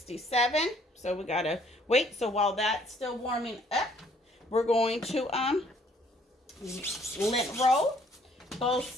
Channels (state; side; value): normal; both; correlation 0.62